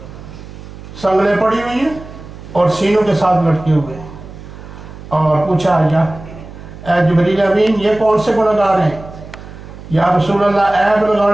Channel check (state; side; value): noise; right; hum, 15 dB below the sound